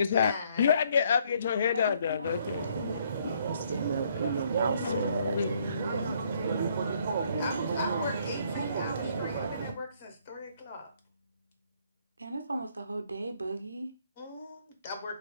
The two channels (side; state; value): both; inverted; correlation -0.67